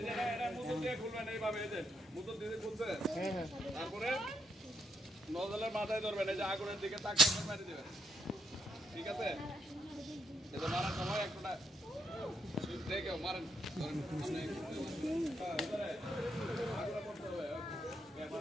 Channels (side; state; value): both; normal; correlation 0.78